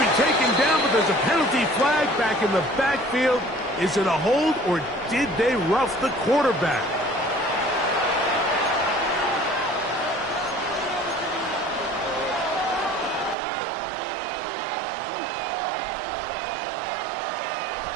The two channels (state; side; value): drops out; left; at 13.4 s